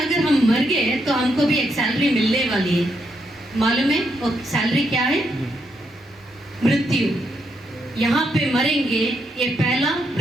हम मर गए तो हमको भी एक सैलरी मिलने वाली है। मालूम है वो सैलरी क्या है? मृत्यु। यहाँ पे मरेंगे, ये पहला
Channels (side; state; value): both; normal; correlation 0.79